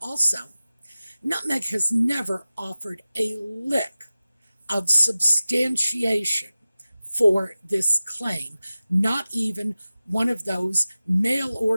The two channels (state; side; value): inverted; both; correlation -0.96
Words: also Nutmeg has never offered a lick of substantiation for this claim, not even one of those mail